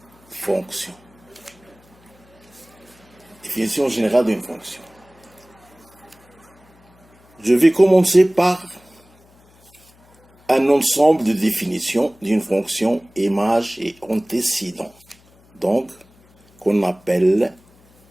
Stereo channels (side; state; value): left; noise; hum, 30 dB below the sound